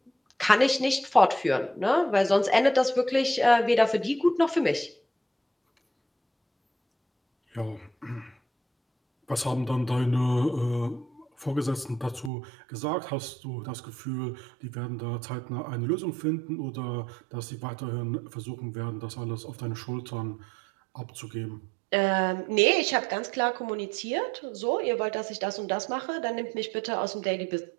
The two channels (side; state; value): left; drops out; at 12.3 s